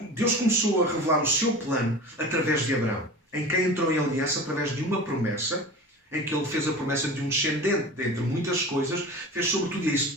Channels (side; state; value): both; normal; correlation 0.35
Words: Deus começou a revelar o seu plano através de Abraão, em quem entrou em aliança através de uma promessa, em que ele fez a promessa de um descendente, dentre muitas coisas, fez sobretudo